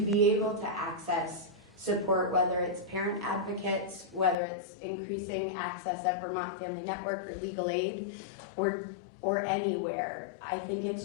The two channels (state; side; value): drops out; right; at 4.4 s